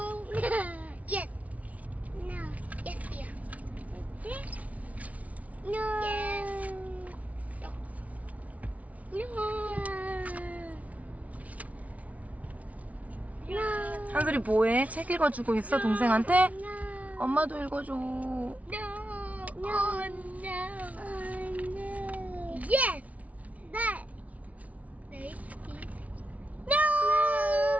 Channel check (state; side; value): late; left; 0.069 ms